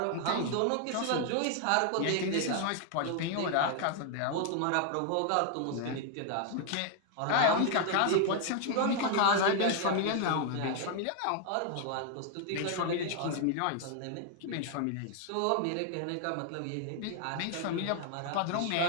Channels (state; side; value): different; both; correlation 0.00